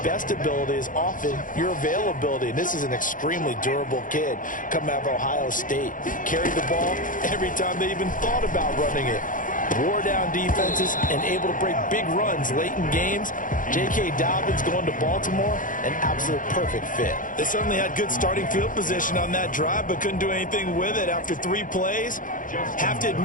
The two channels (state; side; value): late; right; 0.39 ms